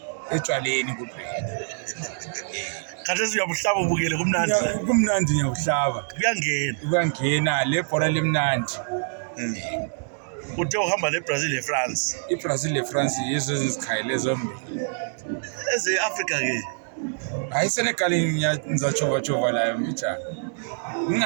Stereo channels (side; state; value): left; silent; digital silence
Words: etshwaleni kuphela. Khathesi uyabuhlaba ubukele kumnandi. Kumnandi ngiyabuhlaba. Kuyangena le bhola limnandi. Uthe uhamba neBrazil neFrance. iBrazil neFrance yizo ezikhayile zombili. Eze-Africa ke. Hayi Senegal ngizachova layo mbijana.